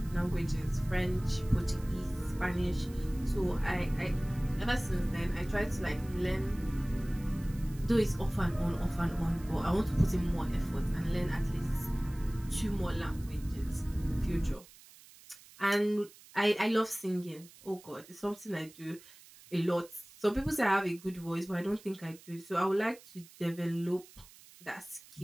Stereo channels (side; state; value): right; noise; hiss, 22 dB below the sound